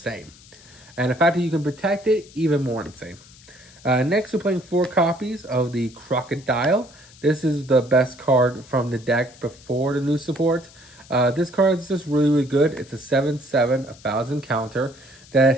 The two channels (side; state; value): left; noise; hiss, 23 dB below the sound